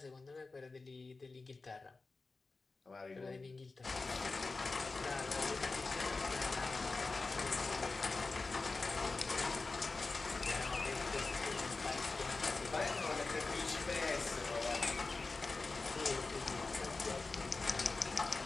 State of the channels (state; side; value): quieter; right; 3.8 dB